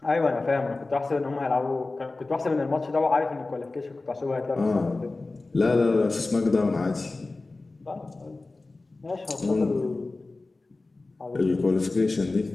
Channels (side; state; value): right; quieter; 3.3 dB